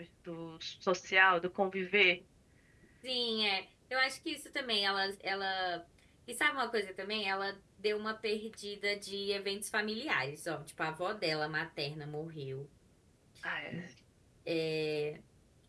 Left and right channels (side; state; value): both; identical; correlation 1.00